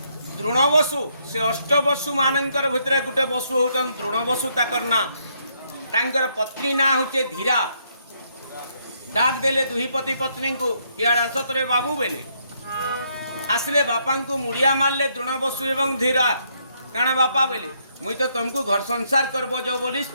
द्रोणवसु से अष्टवसु मानकर भितर गोटे वसु होचन द्रोणवसु, ताकर ना तांकर पत्नी ना होचे धीरा। डाक देले दुही पति पत्नी को, इयाड़ आसत रे बाबू बेले आसले बापा को मुड़िया मारले द्रोणवसु एवं धीरा। काण बापा बोले मुई तो तुमको घर संसार करबो जो बोली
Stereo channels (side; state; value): both; inverted; correlation -0.73